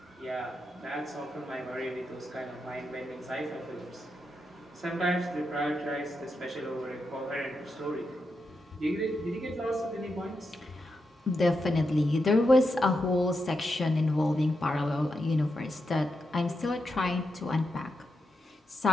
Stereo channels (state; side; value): normal; both; correlation 0.86